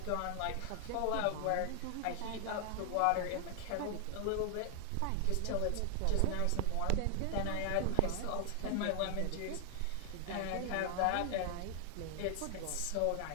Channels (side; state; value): both; different; correlation 0.00